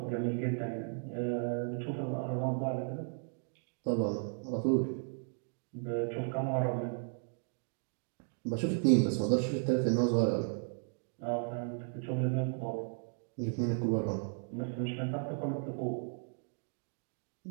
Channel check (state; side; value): silent; left; 54 dB below the other